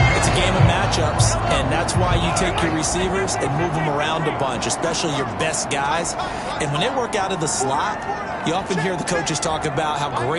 It's a game of matchups, and that's why you take your receivers and move them around a bunch, especially your best guys. And when they work out of the slot, you often hear the coaches talk about how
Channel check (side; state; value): both; identical; correlation 1.00